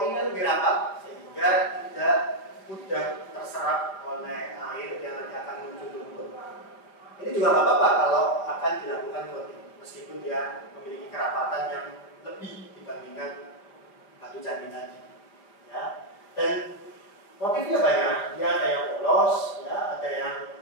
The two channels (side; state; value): right; late; 4.9 ms